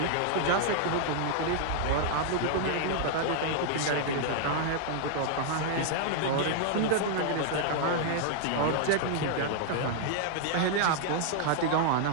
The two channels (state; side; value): different; both; correlation -0.01